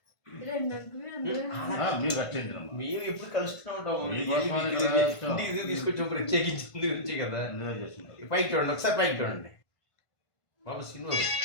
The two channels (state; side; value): late; right; 1.5 ms